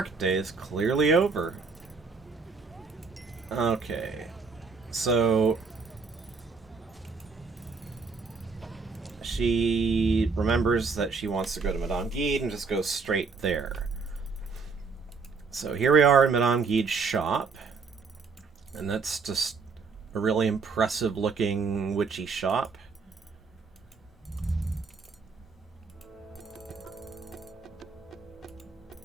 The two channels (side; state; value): left; quieter; 4.8 dB